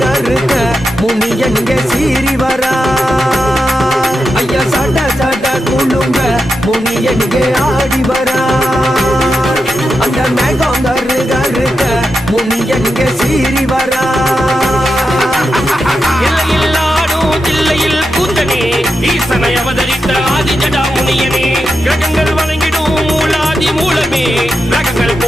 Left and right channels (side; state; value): both; normal; correlation 0.88